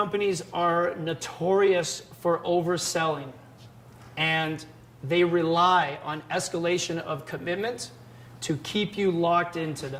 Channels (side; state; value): both; identical; correlation 1.00